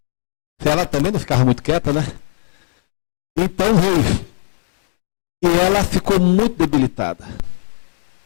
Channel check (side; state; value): right; silent; digital silence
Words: Ela também não ficava muito quieta, né? Então veio. E ela ficou muito debilitada.